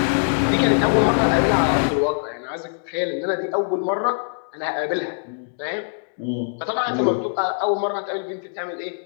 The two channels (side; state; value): right; silent; digital silence